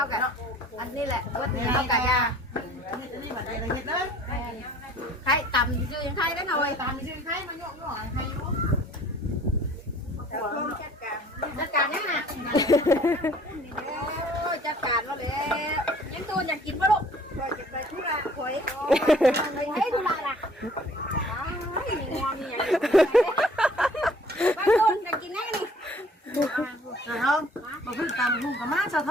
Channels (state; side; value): normal; both; correlation 0.54